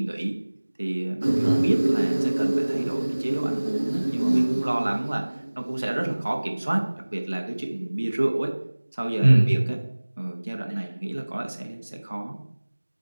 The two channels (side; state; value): both; inverted; correlation -1.00